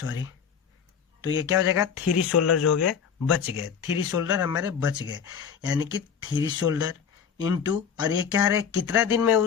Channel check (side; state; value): right; quieter; 7.3 dB